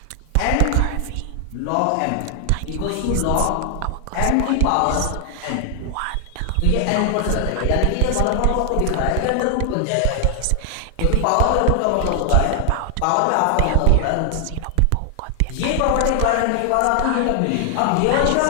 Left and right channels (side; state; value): both; different; correlation 0.00